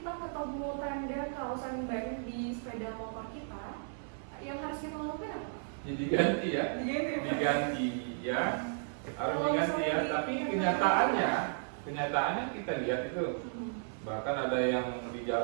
ketemu tanda kausan ban di sepeda motor kita, yang harus kita lakukan apa? Ya, diganti ya. Diganti ya Pak? Diganti ya. Harus Kalau diganti ya. misalnya Tapi kenyataannya kita lihat itu. Bahkan ada yang di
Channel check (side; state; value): left; silent; 55 dB below the other